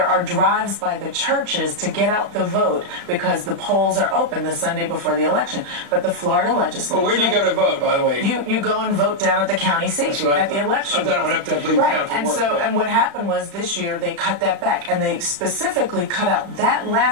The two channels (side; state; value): left; late; 35 ms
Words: are drives by the churches to get out the vote because the polls are open the Sunday before the election. But the Florida legislature... Well, where do you go to vote, by the way? You go and vote down at the county seat at the election. I've done it when I have to leave town for work. And what happened was this year they cut that back, and they specifically cut out that